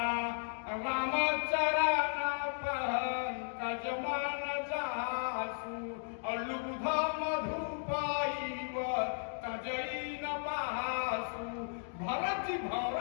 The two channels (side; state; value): right; silent; digital silence